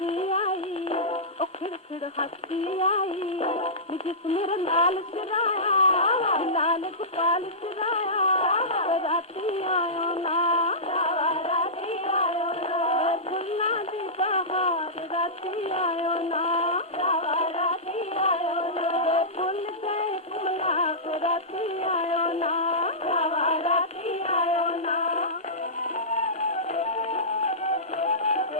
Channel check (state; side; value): normal; both; correlation -0.18